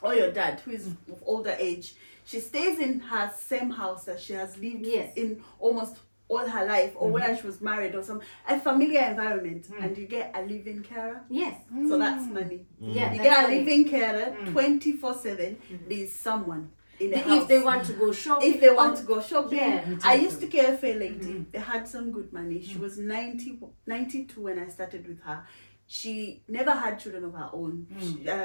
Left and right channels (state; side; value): inverted; both; correlation -1.00